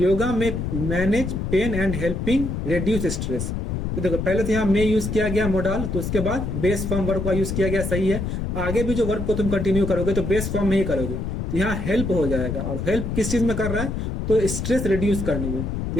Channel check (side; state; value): left; noise; rumble, 3 dB below the sound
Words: में manage pain and helping reduce stress. तो देखो पहले तो यहाँ में यूज किया गया मोडाल, तो उसके बाद बेस फॉर्म वर्ब का यूज किया गया, सही है। आगे भी जो वर्ब को तुम कंटिन्यू करोगे तो बेस फॉर्म में ही करोगे, तो यहाँ हेल्प हो जाएगा। और हेल्प किस चीज में कर रहा है? तो स्ट्रेस रिड्यूस करने में। तो